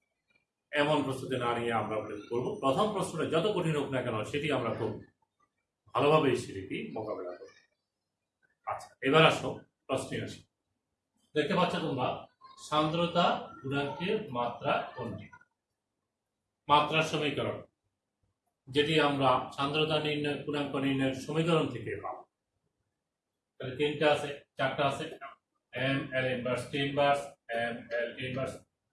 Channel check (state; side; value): identical; both; correlation 1.00